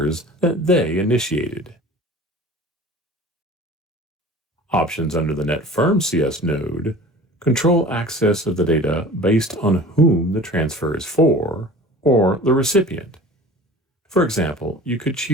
that they initiated. Options under the Netfirm CS node control access of the data based on whom the transfer is for or the recipient. For example, you could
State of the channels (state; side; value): normal; both; correlation 0.42